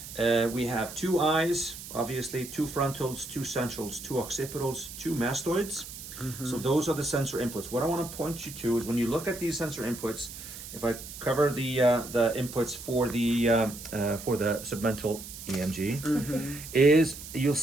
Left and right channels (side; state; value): right; noise; hiss, 12 dB below the sound